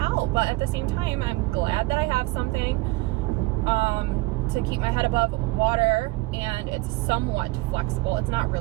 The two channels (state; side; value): quieter; left; 21.0 dB